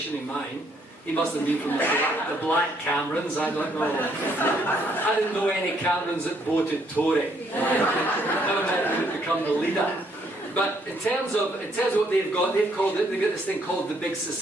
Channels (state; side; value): normal; both; correlation 0.69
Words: in mine, he must have been from the Black Camerons, I don't know. I didn't know any Camerons that voted Tory. Never mind who would become the leader. But in terms of what they've got this thing called the Big